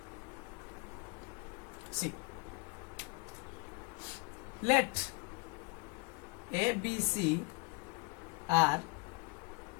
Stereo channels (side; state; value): right; quieter; 29.8 dB